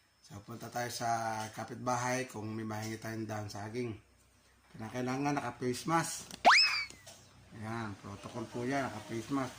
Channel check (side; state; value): both; identical; correlation 1.00